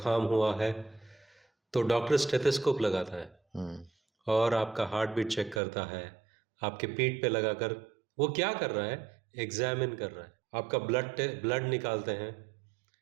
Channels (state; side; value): drops out; left; at 5.6 s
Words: हुआ है, तो डॉक्टर स्टेथोस्कोप लगाता है और आपका हार्ट बीट चेक करता है, आपके पीठ पे लगाकर वो क्या कर रहा है? एग्जामिन कर रहा है। आपका ब्लड निकालते हैं